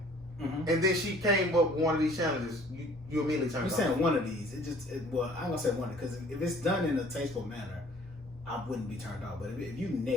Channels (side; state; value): both; normal; correlation 0.54